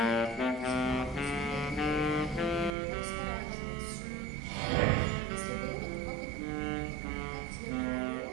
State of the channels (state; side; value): drops out; left; at 2.7 s